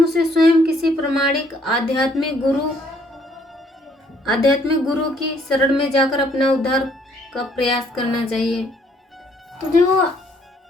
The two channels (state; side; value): normal; both; correlation 0.65